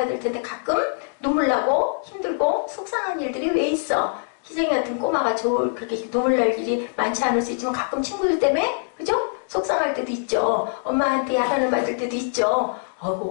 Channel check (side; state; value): right; silent; digital silence